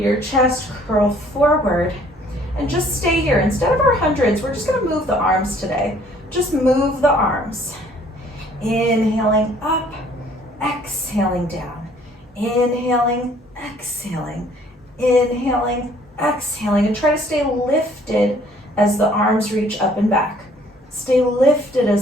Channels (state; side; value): normal; both; correlation 0.59